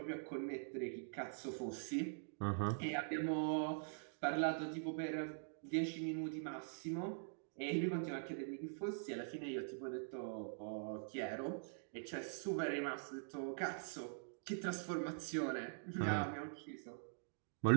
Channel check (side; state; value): left; silent; digital silence